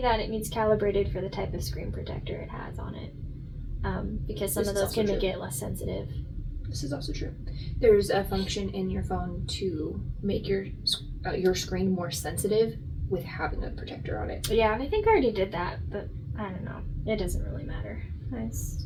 that it needs calibrated for the type of screen protector it has on it. Because some of those can make it less sensitive. This is also true. There's a function in your phone to make your screen more sensitive with having a protector on it. Yeah, and I think I already did that, but I don't know. It doesn't really matter.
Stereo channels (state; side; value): identical; both; correlation 1.00